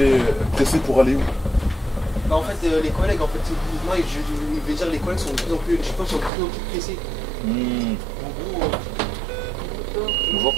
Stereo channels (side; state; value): left; drops out; at 6.3 s